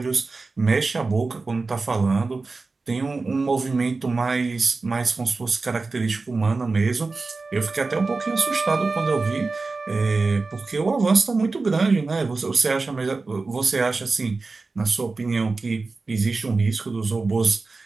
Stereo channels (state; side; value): quieter; left; 3.8 dB